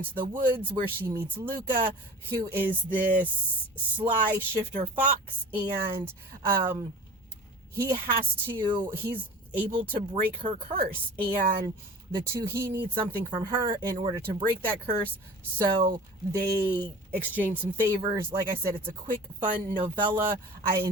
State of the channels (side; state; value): both; normal; correlation 0.40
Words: the woods where she meets Luca, who is this sly shifter fox, and he's able to break her curse, and he needs something from her in order to break that curse. So they exchange some favors. Like I said, it's a quick, fun novella. I